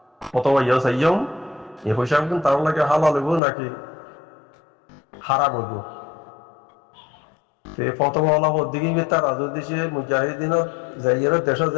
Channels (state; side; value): drops out; right; at 3.4 s